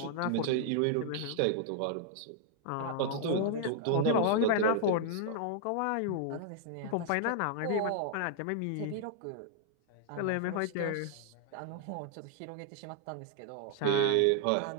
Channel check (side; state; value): both; different; correlation -0.01